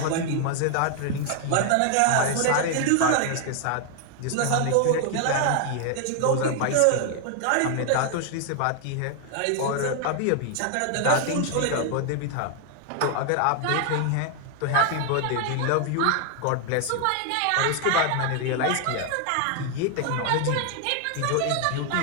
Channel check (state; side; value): different; both; correlation 0.00